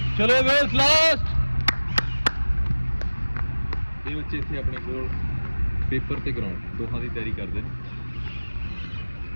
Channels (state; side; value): inverted; both; correlation -1.00